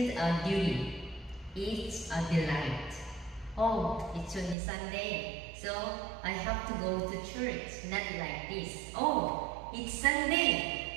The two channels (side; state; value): left; drops out; at 4.5 s